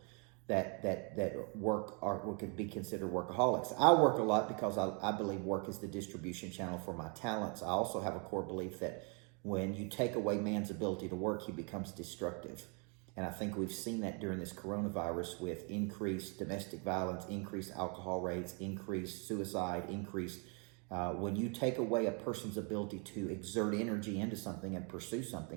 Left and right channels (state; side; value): quieter; left; 35.7 dB